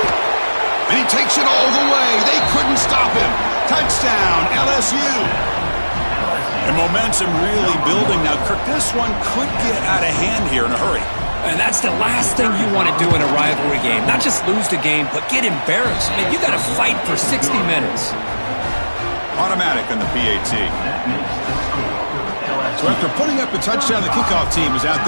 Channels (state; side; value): inverted; both; correlation -1.00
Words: And he takes it all the way. They couldn't stop him. Touchdown, LSU. And momentum really building. Now, Kirk, this one could get out of hand here in a hurry. And that's the last thing you want to do in a rivalry game. Not just lose the game, but get embarrassed. I mean, you got to fight for 60 minutes. Automatic on the PAT. So after putting up a touchdown, the kickoff team is out